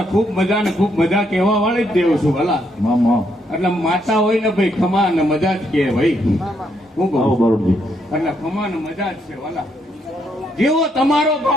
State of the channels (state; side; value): normal; both; correlation 0.75